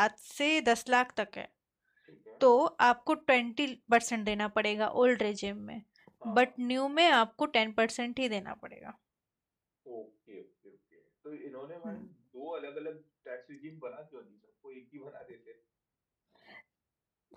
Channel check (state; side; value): identical; both; correlation 1.00